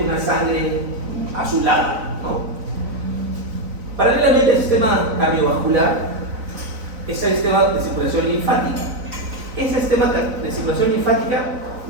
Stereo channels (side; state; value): left; late; 4.0 ms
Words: una sangre azulada, ¿no? Paralelamente al sistema cardiovascular es el sistema de circulación linfática. Ese sistema de circulación linfática